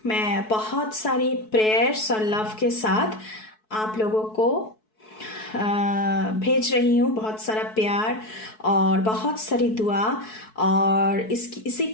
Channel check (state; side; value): late; right; 4.6 ms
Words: मैं बहुत सारी प्रेयर्स और लव के साथ आप लोगों को भेज रही हूँ, बहुत सारा प्यार और बहुत सारी दुआ। और इसी